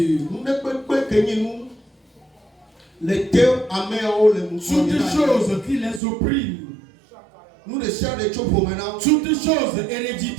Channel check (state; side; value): drops out; left; at 6.0 s